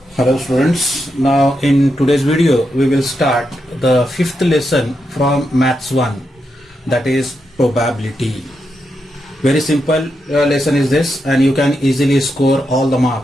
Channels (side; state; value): both; normal; correlation 0.85